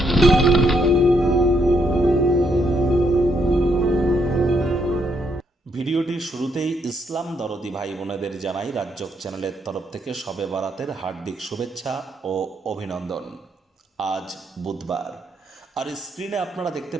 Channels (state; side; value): normal; both; correlation 0.74